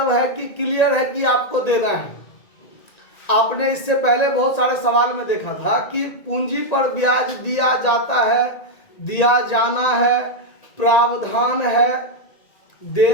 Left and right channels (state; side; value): late; right; 1.9 ms